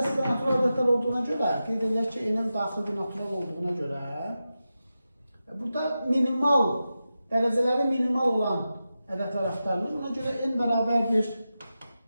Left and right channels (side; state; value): both; inverted; correlation -0.92